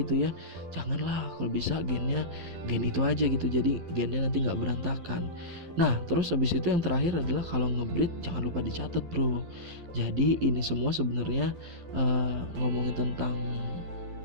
ya, janganlah. Kalau bisa gen itu aja gitu, jadi gennya nanti nggak berantakan. Nah terus habis itu yang terakhir adalah kalau ngebreed jangan lupa dicatat bro. Jadi ini semua sebenarnya ngomongin tentang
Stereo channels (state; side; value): late; left; 12 ms